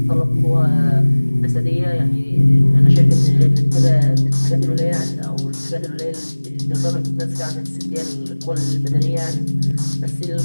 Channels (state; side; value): inverted; both; correlation -1.00